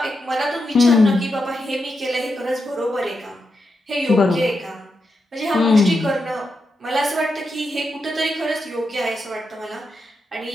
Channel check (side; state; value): both; normal; correlation 0.86